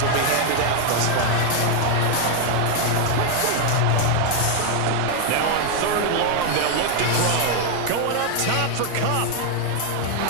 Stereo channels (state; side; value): different; both; correlation 0.00